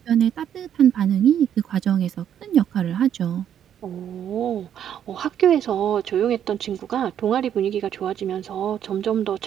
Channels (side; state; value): left; quieter; 9.6 dB